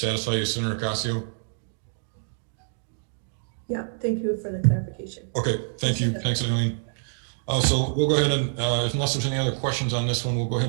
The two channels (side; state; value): left; silent; digital silence